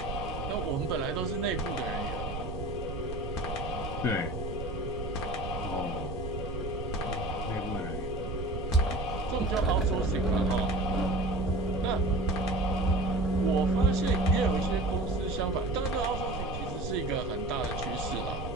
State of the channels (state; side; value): noise; right; rumble, 6 dB below the sound